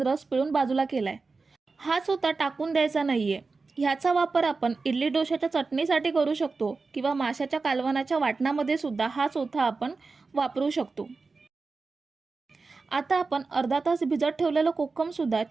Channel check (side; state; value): left; quieter; 4.1 dB